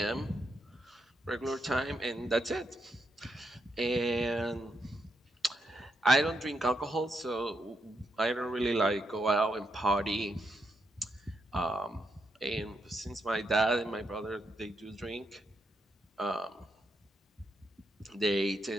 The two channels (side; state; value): both; normal; correlation 0.81